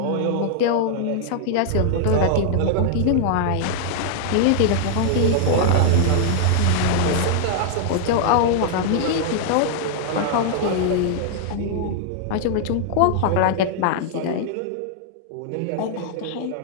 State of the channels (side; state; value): both; different; correlation -0.01